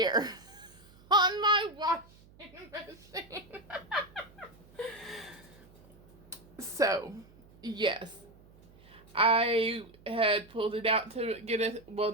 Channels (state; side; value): noise; right; hum, 25 dB below the sound